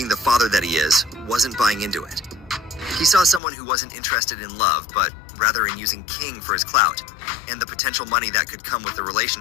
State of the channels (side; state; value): right; drops out; at 3.4 s